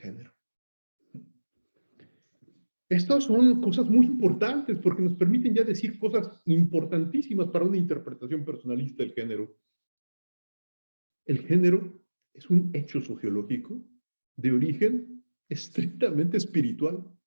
Estas son cosas muy importantes porque nos permiten ya decir cosas importantísimas para una interpretación personalista del género. El género es un hecho sociológico de origen estrictamente espiritual.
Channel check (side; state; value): both; inverted; correlation -1.00